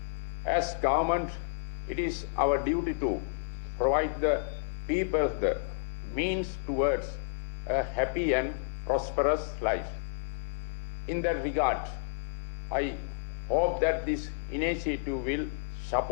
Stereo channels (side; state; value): right; silent; digital silence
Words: As government, it is our duty to provide the people the means towards a happy and prosperous life. In that regard, I hope that this initiative will